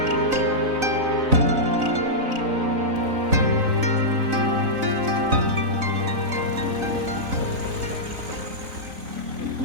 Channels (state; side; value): late; left; 3.9 ms